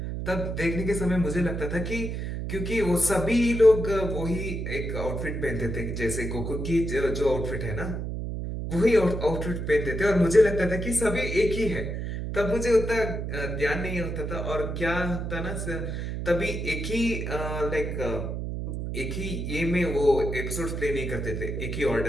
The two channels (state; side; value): noise; right; hum, 4 dB below the sound